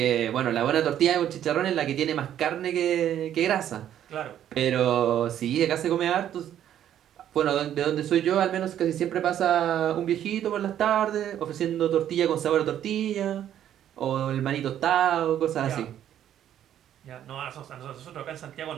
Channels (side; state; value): left; quieter; 10.8 dB